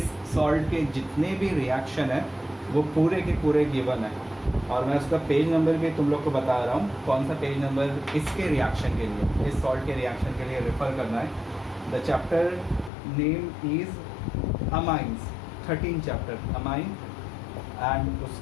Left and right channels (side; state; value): right; drops out; at 12.9 s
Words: salt के जितने भी reaction है वो पूरे के पूरे गिवन है, और मैं उसका पेज नंबर भी तुम लोग को बता रहा हूँ कौन सा पेज नंबर इसके रिएक्शन के लिए, इस सॉल्ट के रिएक्शन के लिए रेफर करना है। The chapter name is amines, 13 chapter amine, and